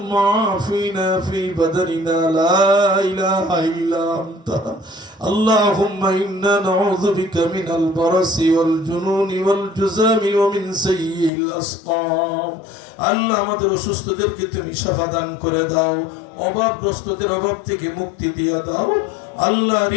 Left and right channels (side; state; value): right; drops out; at 11.3 s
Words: আফিনা ফি বাদানিনা লা ইলাহা ইল্লা আনতা আল্লাহুম্মা ইন্না নাউযু বিকা মিনাল বারাসি ওয়াল জুনুনি ওয়াল জুযামি ওয়া মিন সাইয়্যিল আসকাম। আল্লাহ, আমাদের অসুস্থদেরকে তুমি শিফা দান করে দাও, অভাবগ্রস্তদের অভাব থেকে মুক্তি দিয়ে দাও আল্লাহ।